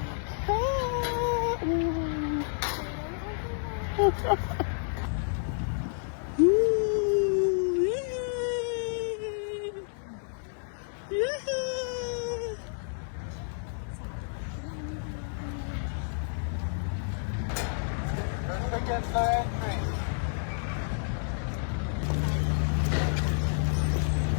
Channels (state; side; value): silent; right; digital silence